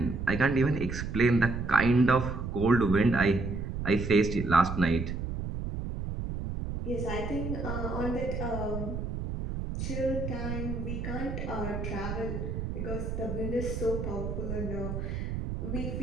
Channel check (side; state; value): right; noise; rumble, 4 dB below the sound